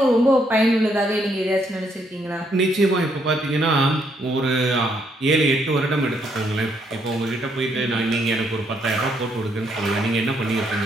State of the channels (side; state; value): both; normal; correlation 0.73